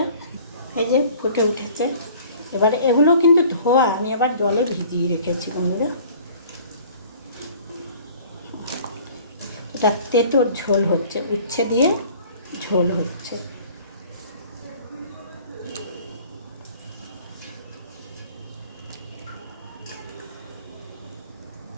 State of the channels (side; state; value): both; inverted; correlation -0.50